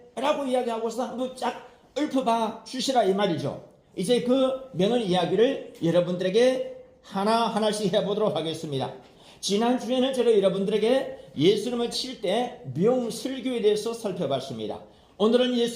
라고 이야기하고서 한번 쫙 읊어봐 주시라 이 말이죠. 이제 그 명언 이야기를 여러분들에게 하나하나씩 해보도록 하겠습니다. 지난주에는 제가 여러분들에게 예수님을 7대 명설교에 대해서 살펴봤습니다. 오늘은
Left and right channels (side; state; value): both; identical; correlation 1.00